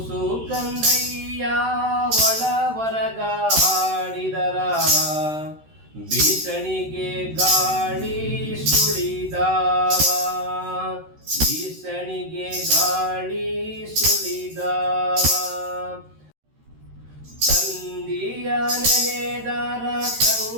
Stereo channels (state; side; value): late; left; 13 ms